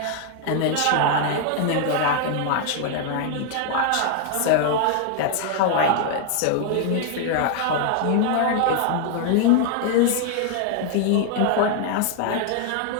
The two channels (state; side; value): different; both; correlation 0.00